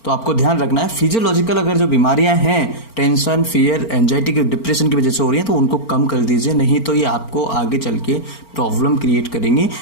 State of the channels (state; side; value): late; right; 4.4 ms